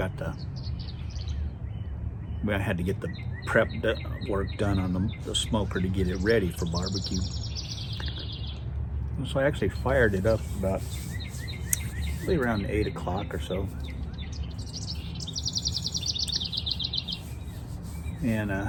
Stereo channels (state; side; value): identical; both; correlation 1.00